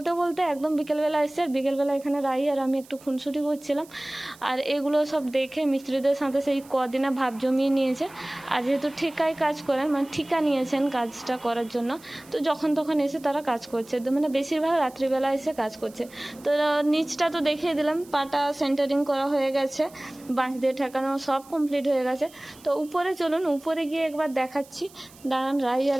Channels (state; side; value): noise; right; hiss, 24 dB below the sound